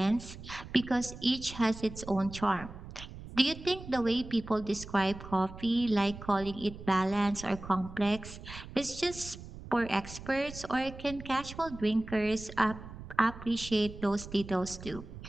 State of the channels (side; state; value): right; noise; rumble, 13 dB below the sound